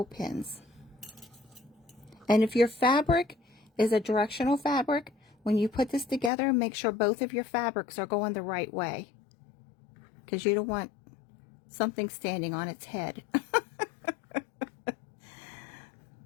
pins. And if your fabric is a directional fabric, when you put this together, make sure both of your fabrics are going the right way, because you don't want something standing on its head.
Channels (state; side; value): drops out; right; at 6.3 s